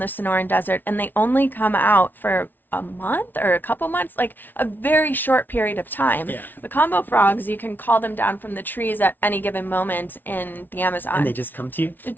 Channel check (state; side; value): late; right; 0.090 ms